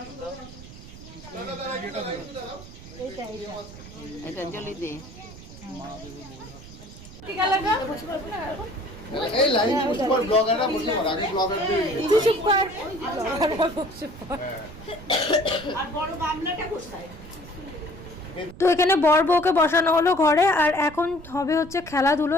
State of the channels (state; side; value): noise; right; rumble, 16 dB below the sound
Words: এটা জলি দে। এই লাইন পুশ কর, ব্লগাররা বসে পড়, আগে ব্লগারদের তুই চুপ কর। আর বড় গামলাটা কোথায়? তো এখানে বর বউকে বসানো হলো ঘরে, আর এখন হবে হচ্ছে খেলাধুলো